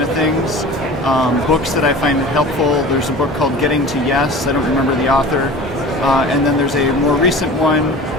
of things. Books that I find helpful, there's a book called Getting to Yes, I don't remember the author, and then there's a more recent one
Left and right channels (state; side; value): normal; both; correlation 0.38